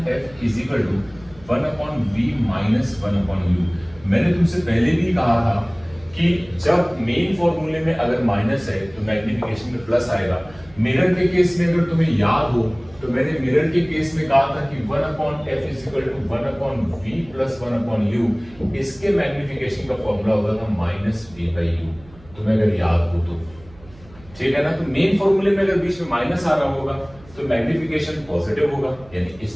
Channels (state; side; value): noise; right; hum, 23 dB below the sound